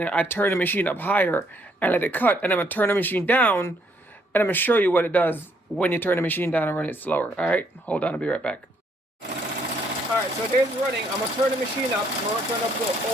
I turn the machine up higher and let it cut, and I'm gonna turn the machine down, and I'm gonna show you what it does when you turn the machine down and run it slower. All right, hold on, I'll be right back. All right, so there's running. I'm gonna turn the machine up. I'm gonna turn up to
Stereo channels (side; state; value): both; normal; correlation 0.69